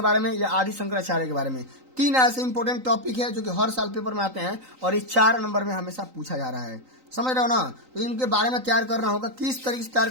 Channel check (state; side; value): late; left; 3.9 ms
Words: बारे में या आदि शंकराचार्य के बारे में। 3 ऐसे इंपॉर्टेंट टॉपिक है जो कि हर साल पेपर में आते हैं और ये 4 नंबर में हमेशा पूछा जा रहा है, समझ रहे हो ना। तो इनके बारे में तैयार करना होगा। किस तरीके से तैयार